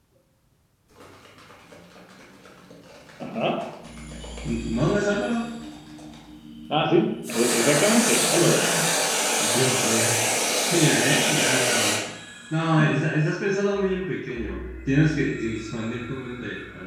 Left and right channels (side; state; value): both; identical; correlation 1.00